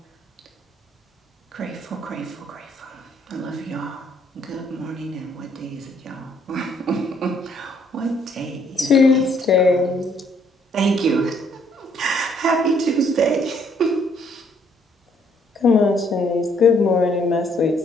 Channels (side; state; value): both; normal; correlation 0.67